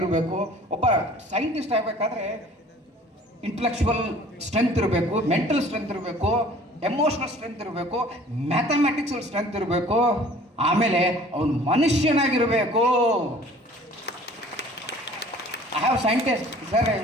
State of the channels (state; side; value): normal; both; correlation 0.49